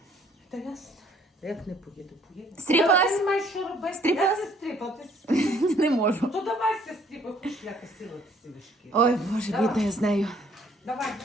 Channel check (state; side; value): normal; both; correlation 0.62